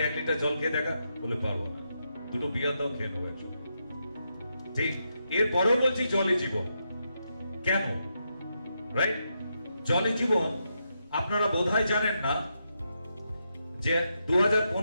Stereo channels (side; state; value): both; inverted; correlation -0.83